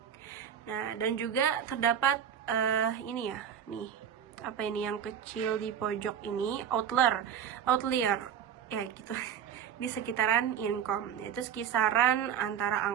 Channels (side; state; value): left; quieter; 8.7 dB